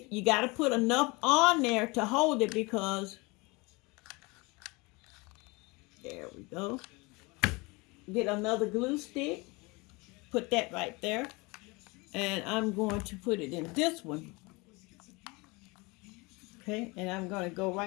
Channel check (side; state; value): right; quieter; 25.9 dB